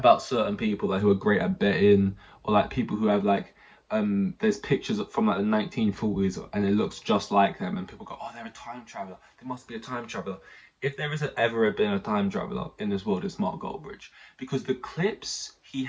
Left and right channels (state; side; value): identical; both; correlation 1.00